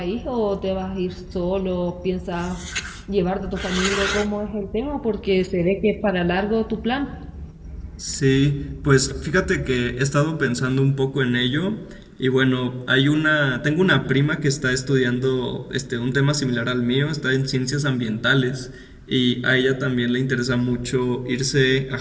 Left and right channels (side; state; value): both; identical; correlation 1.00